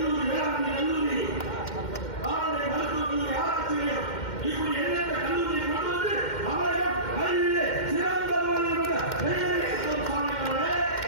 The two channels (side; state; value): right; late; 2.1 ms